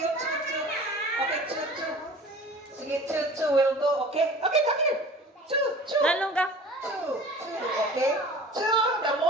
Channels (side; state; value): both; normal; correlation 0.43